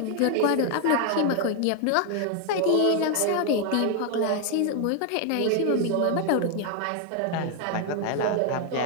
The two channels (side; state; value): both; different; correlation 0.00